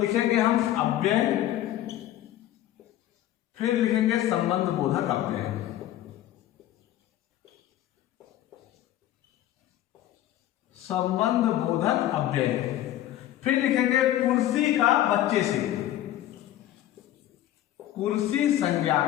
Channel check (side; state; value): right; quieter; 13.3 dB